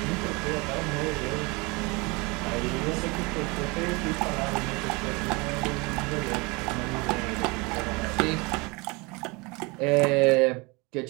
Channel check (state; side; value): quieter; left; 26.6 dB